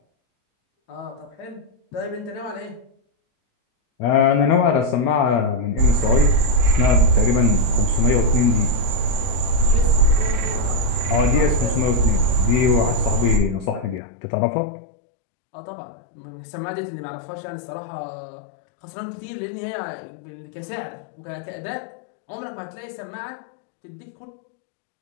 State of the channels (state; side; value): drops out; right; at 14.0 s